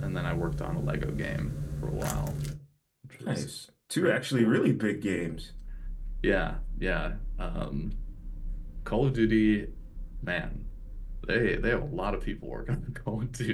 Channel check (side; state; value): both; identical; correlation 1.00